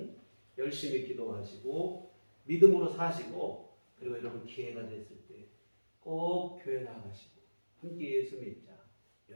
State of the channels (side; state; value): both; inverted; correlation -1.00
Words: 열심히 기도하시고 믿음으로 사시고 그리고 여러분 기회가 됐을 때 꼭 교회 나가시고 함께 예수 믿자